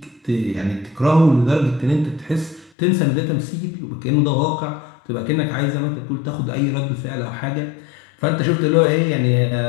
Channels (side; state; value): right; drops out; at 2.7 s